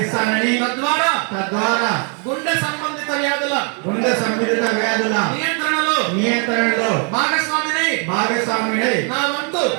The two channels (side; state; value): left; quieter; 38.9 dB